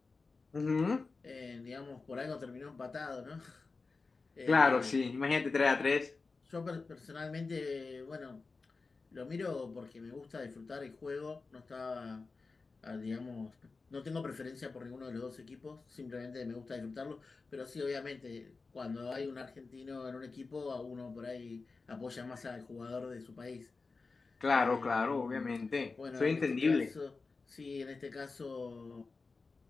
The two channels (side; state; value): right; quieter; 4.1 dB